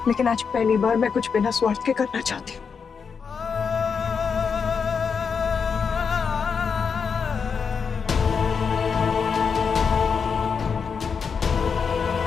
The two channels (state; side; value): quieter; right; 6.0 dB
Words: लेकिन आज पहली बार मैं कुछ बिना स्वार्थ के करना चाहती हूँ।